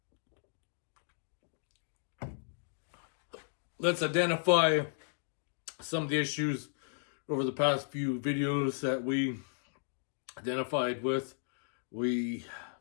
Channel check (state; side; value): silent; right; digital silence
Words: Let's identify some of the issues over the past few videos that we identified with. We